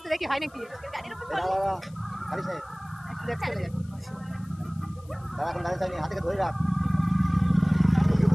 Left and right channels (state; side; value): noise; left; hiss, 28 dB below the sound